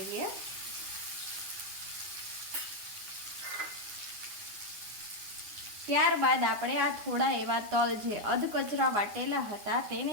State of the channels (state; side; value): late; left; 9.3 ms